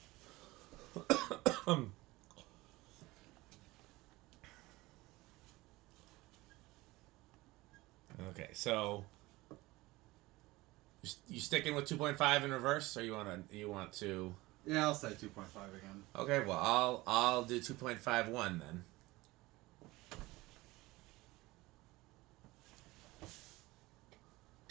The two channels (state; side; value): quieter; left; 20.2 dB